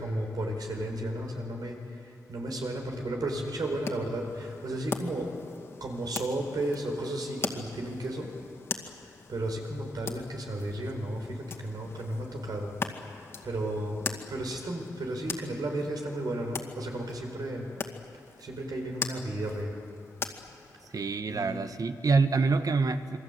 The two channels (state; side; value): normal; both; correlation 0.77